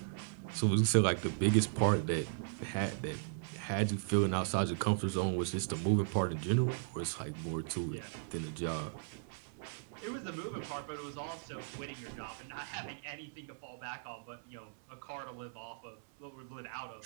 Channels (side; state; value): left; silent; 53 dB below the other